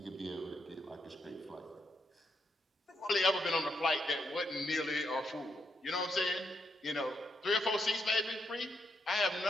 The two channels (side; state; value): both; normal; correlation 0.80